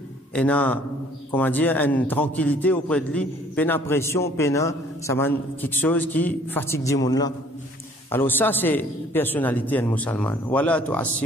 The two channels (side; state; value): both; normal; correlation 0.57